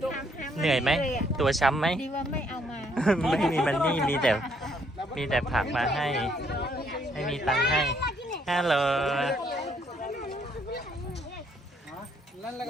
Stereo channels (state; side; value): normal; both; correlation 0.69